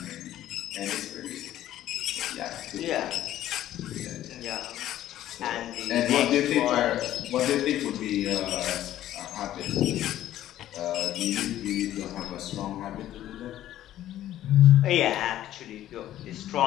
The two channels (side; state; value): right; quieter; 12.9 dB